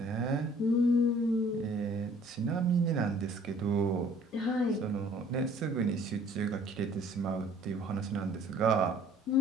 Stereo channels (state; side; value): normal; both; correlation 0.56